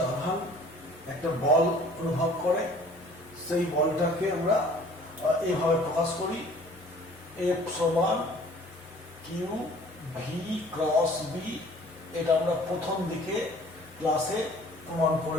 আধান একটা বল অনুভব করে। সেই বলটাকে আমরা এইভাবে প্রকাশ করি, এফ সমান কিউ ভি ক্রস বি। এটা আমরা প্রথম দিকে ক্লাসে প্রমাণ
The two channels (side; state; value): both; normal; correlation 0.52